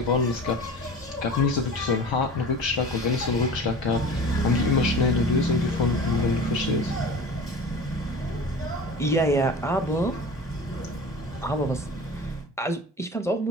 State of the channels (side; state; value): both; normal; correlation 0.37